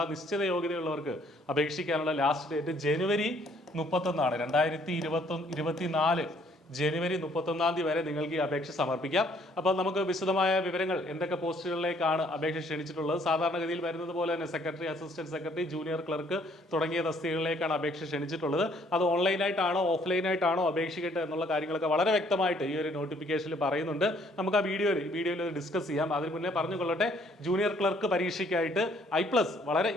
നിശ്ചിത യോഗ്യതയുള്ളവർക്ക് അപേക്ഷിക്കാനുള്ള ലാസ്റ്റ് ഡേറ്റ് ജനുവരി 31 2024 ജനുവരി 31 വരെ നിങ്ങൾക്ക് ഈ അപേക്ഷ സമർപ്പിക്കാം. അപ്പോൾ നമുക്ക് വിശദമായ വിവരങ്ങൾ എന്തൊക്കെ പോസ്റ്റുകളിലേക്കാണ് അപേക്ഷ ക്ഷണിച്ചിട്ടുള്ളത്. സാധാരണഗതിയിൽ വരുന്നത് പോലെ തന്നെ secretary, assistant secretary, junior clerk തുടങ്ങിയ തസ്തികകളിലേക്കാണ് അപേക്ഷ ക്ഷണിച്ചിട്ടുള്ളത്. അത് ഓൺലൈനായിട്ടാണോ ഓഫ്ലൈനായിട്ടാണോ അപേക്ഷിക്കട്ടെ എന്നുള്ള കാര്യങ്ങളൊക്കെ വളരെ വ്യക്തമായിട്ട് ഈ ഒരു നോട്ടിഫിക്കേഷനിൽ പറയുന്നുണ്ട്. നമുക്ക് ആ വീഡിയോയിൽ ഡിസ്കസ് ചെയ്യാം. അതിന് മുന്നേ പറഞ്ഞുകൊള്ളട്ടെ, ജൂനിയർ ക്ലർക്ക് പരീക്ഷയ്ക്കായിട്ട് I+ വളരെ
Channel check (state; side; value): normal; both; correlation 0.63